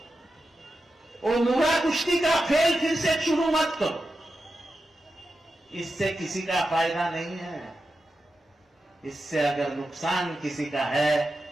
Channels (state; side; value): normal; both; correlation 0.90